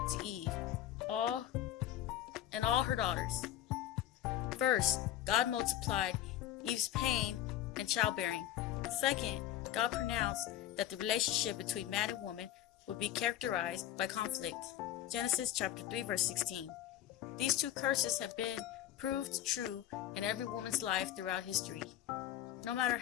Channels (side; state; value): right; quieter; 12.3 dB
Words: to Eve and all her daughters. First, God multiplied Eve's pain and childbearing. Second, God pronounced that the relationship between man and woman would be characterized by conflict. Genesis chapter 3 verse 16. These two curses have been proved true in every woman's life throughout history. No matter